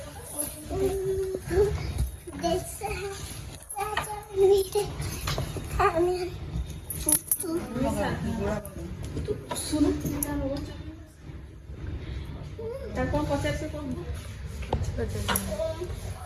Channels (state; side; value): identical; both; correlation 1.00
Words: ଶୁଣୁ ତାକୁ କଣ ପଚାରୁଛୁ କଣ